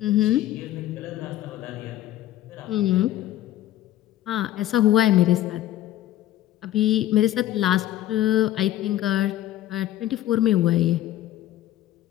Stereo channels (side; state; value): right; quieter; 13.7 dB